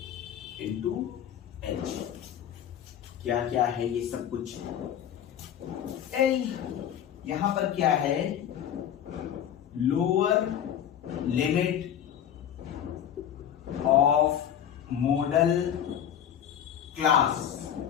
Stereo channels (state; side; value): quieter; right; 9.6 dB